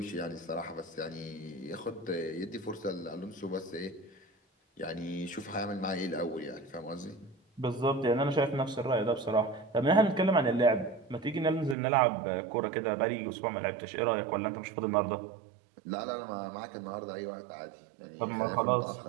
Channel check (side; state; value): left; drops out; at 11.8 s